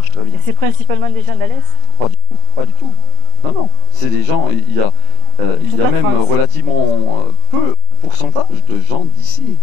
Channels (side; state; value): left; late; 30 ms